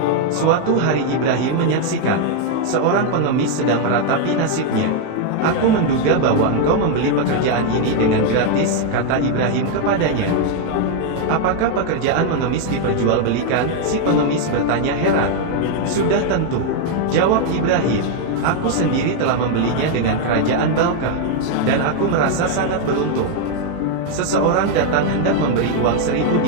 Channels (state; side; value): different; both; correlation 0.00